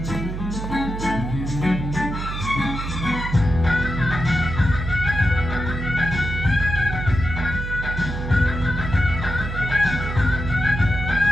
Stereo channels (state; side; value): noise; right; hum, 5 dB below the sound